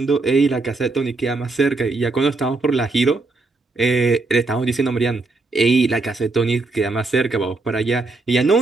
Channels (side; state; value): left; quieter; 3.5 dB